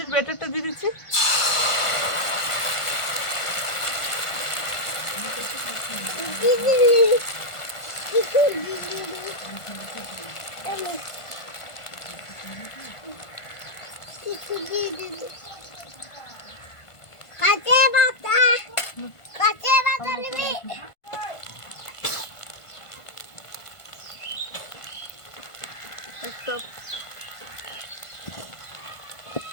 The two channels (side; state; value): right; late; 1.5 ms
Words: ব্যাটারটা দিয়ে দিচ্ছি। একটা